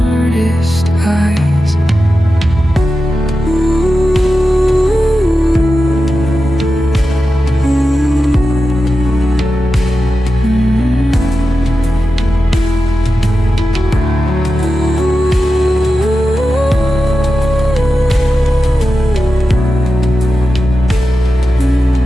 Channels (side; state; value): both; normal; correlation 0.92